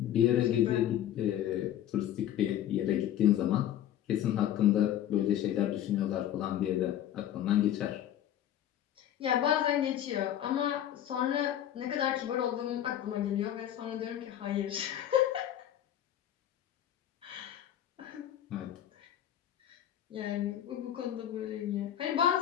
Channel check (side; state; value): right; quieter; 11.3 dB